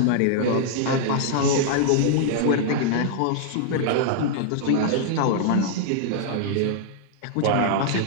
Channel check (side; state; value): both; different; correlation -0.01